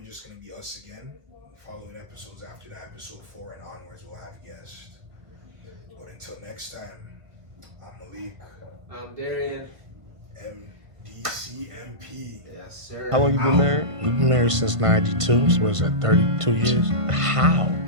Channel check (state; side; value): late; left; 1.5 ms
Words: just gonna be us again. Following episodes after that, episode 4 and onwards, we'll have guests. But until next time, I'm Malik. I'm Darian. MDCMP. Yes, sir. How long you been married? We've been married since 92, so what's that, 32 years? How?